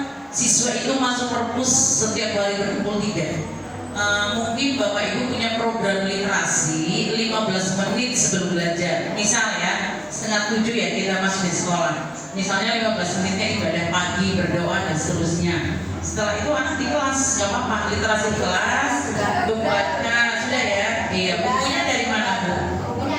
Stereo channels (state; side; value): identical; both; correlation 1.00